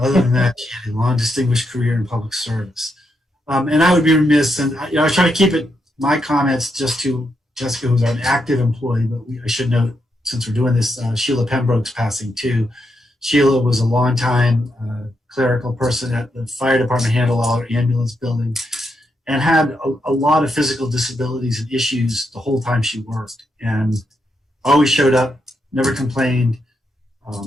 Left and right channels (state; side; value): normal; both; correlation 0.81